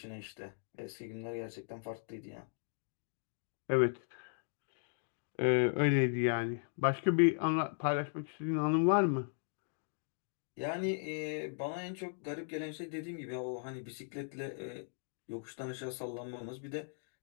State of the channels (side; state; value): right; silent; digital silence